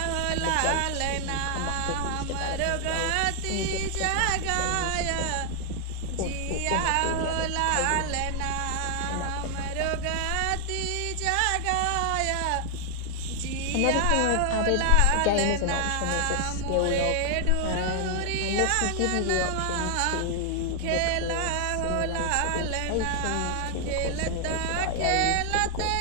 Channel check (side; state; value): both; different; correlation 0.00